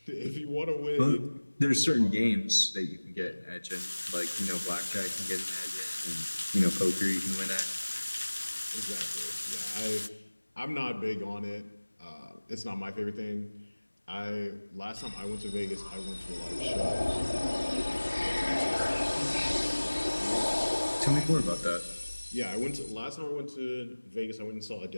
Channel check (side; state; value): both; inverted; correlation -1.00